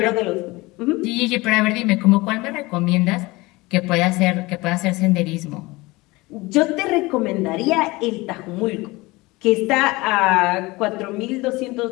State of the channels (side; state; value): right; quieter; 22.1 dB